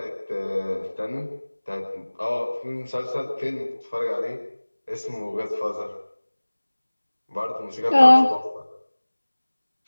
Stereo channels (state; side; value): inverted; both; correlation -1.00